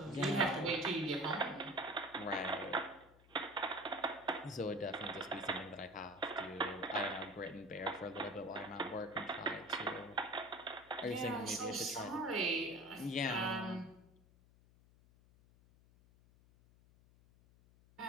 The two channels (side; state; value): left; noise; hum, 26 dB below the sound